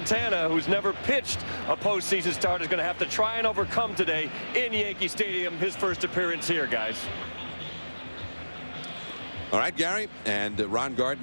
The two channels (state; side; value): inverted; both; correlation -1.00